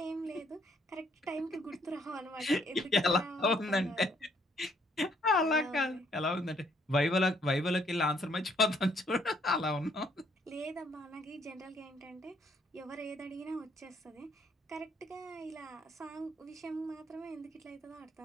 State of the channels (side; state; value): both; normal; correlation 0.67